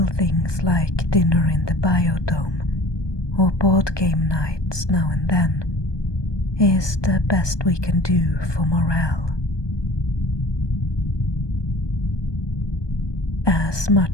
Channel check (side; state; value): right; late; 1.2 ms